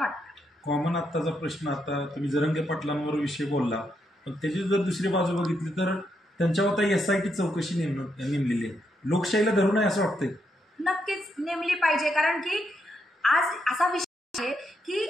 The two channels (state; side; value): normal; both; correlation 0.80